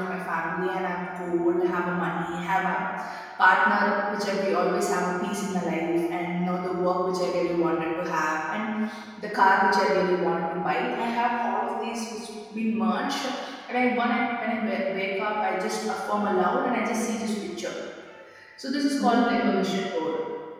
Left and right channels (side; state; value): both; identical; correlation 1.00